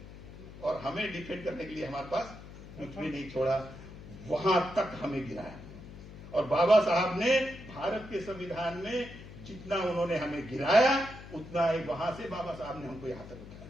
और हमें डिफेंड करने के लिए हमारे पास कुछ भी नहीं छोड़ा। वहां तक हमें गिराया। और बाबा साहब ने भारत के संविधान में जितना उन्होंने हमें गिराया, उतना ही वहां से बाबा साहब ने हमको यहां तक उठाया।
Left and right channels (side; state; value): left; noise; hum, 15 dB below the sound